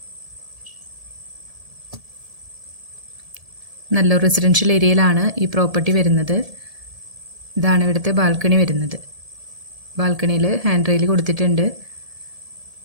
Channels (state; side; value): late; left; 1.7 ms